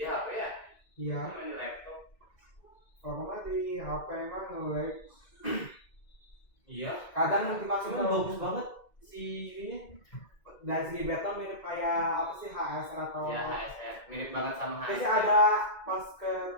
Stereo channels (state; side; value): late; right; 2.1 ms